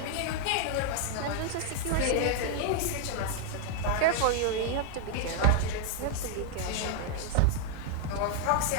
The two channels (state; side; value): different; both; correlation 0.00